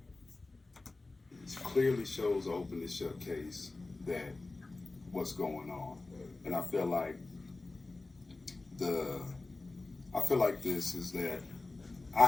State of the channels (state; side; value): quieter; right; 3.3 dB